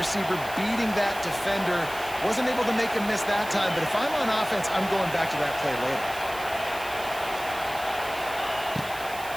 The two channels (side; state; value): right; noise; hiss, 15 dB below the sound